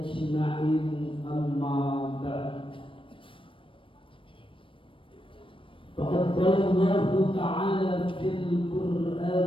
amma ba'd. Faqad qala Allah ta'ala fil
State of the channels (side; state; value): right; late; 0.25 ms